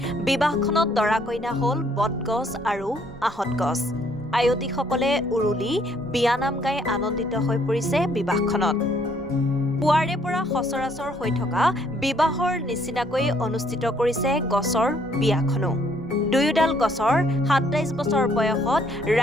বিবাহখনত দৰা কইনা হল বটগছ আৰু আহত গছ আয়তীসকলে উৰুলি বিয়ানাম গাই আনন্দিত হৈ পৰিছে বিবাহখনত পুৱাৰে পৰা সচৰাচৰ হৈ থকা বিবাহৰ নিচিনাকৈ অনুষ্ঠিত কৰিছে গছৰ বিয়াখনো দুয়োডাল গছৰ ২৭ বছৰ বয়সত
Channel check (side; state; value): both; normal; correlation 0.66